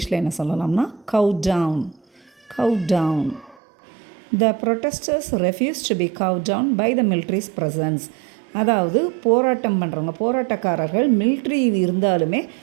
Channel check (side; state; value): left; drops out; at 3.6 s